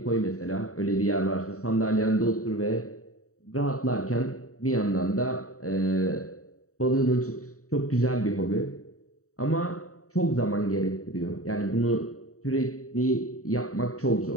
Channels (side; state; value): right; late; 0.65 ms